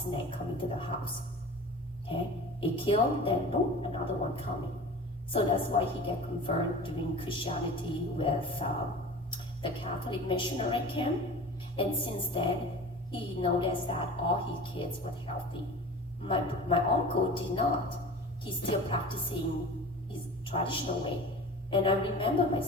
coming to the house. Okay, he killed, then boom, another one coming. So that's why he get converted during Christianity with the Catholic missionary camp. And since then, he noticed that all his kids were healthy. My uncle did not. He's still practicing his traditional way. And I remember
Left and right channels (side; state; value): both; normal; correlation 0.37